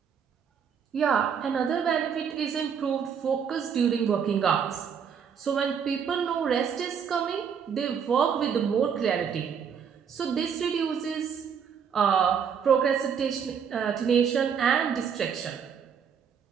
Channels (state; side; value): quieter; left; 7.2 dB